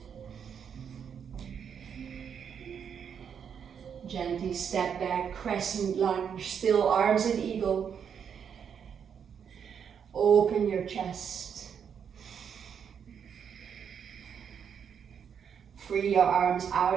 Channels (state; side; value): quieter; left; 7.5 dB